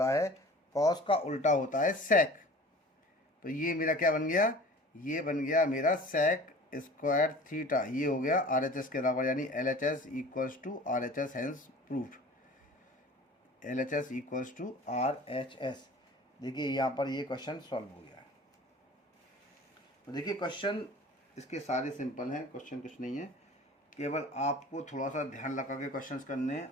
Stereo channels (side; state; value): both; normal; correlation 0.43